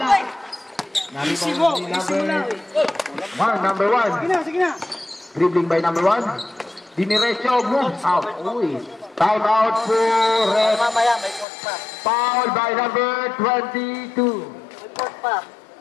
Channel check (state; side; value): drops out; right; at 11.5 s